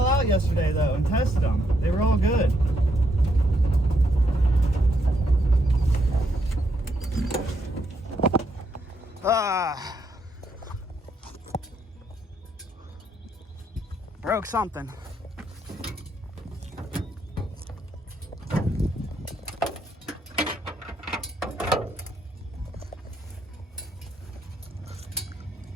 out yesterday though and tested them. They were all good. Broke something.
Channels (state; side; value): normal; both; correlation 0.76